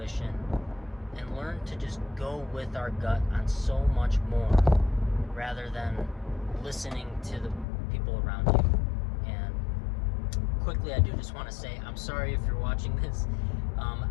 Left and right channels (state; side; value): drops out; right; at 7.7 s